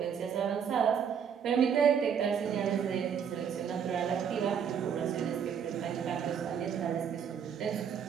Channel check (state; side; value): quieter; left; 7.6 dB